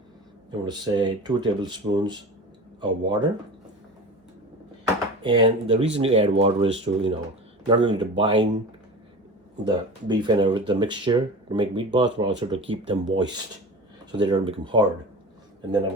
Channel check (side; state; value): both; normal; correlation 0.33